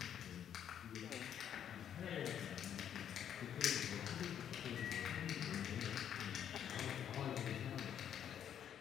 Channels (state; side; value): quieter; right; 9.4 dB